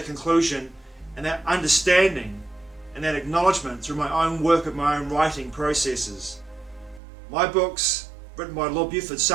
conclusion and that understanding and that acknowledgement through my own work of my own writing processes. My books, written by Lord Buford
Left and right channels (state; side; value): drops out; left; at 7.0 s